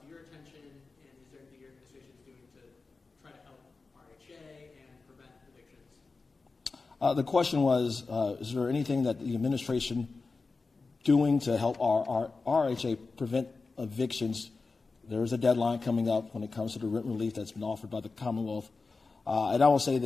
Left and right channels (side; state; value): right; quieter; 4.0 dB